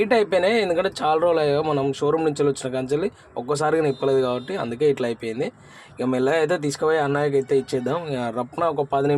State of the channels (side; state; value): both; identical; correlation 1.00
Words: అయిపోయినాయి. ఎందుకంటే చాలా రోజులు అయ్యో మనం షోరూమ్ నుంచి వచ్చిన కంచెల్లి ఒక్కసారిగా నిప్పలేదు కాబట్టి అందుకే ఇట్లా అయిపోయింది. ఇక మెల్లగా అయితే తీసుకుపోయి అన్నయ్యకి అయితే ఇచ్చేద్దాం. ఇక రప్న ఒక 10